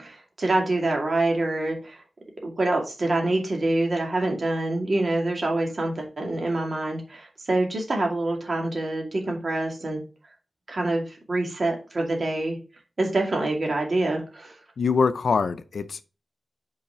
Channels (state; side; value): normal; both; correlation 0.92